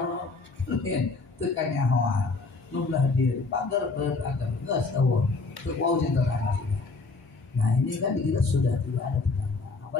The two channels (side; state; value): right; quieter; 3.9 dB